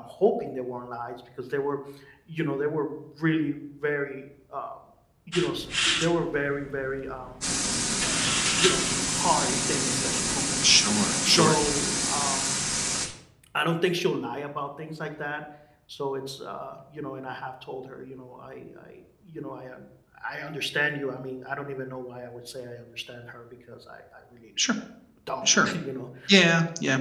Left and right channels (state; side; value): identical; both; correlation 1.00